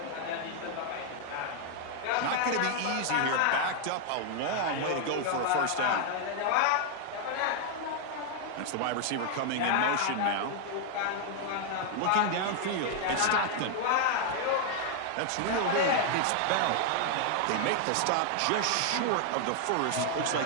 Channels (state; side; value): different; both; correlation 0.00